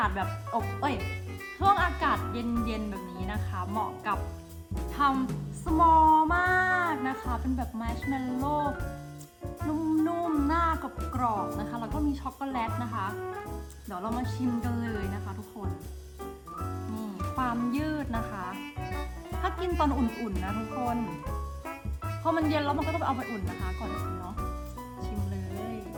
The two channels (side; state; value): both; identical; correlation 1.00